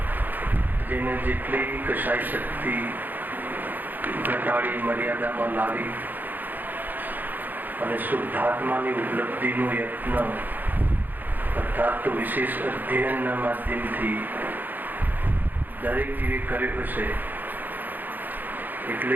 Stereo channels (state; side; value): late; left; 0.087 ms